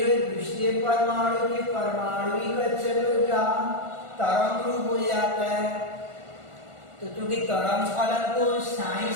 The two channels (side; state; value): left; late; 1.4 ms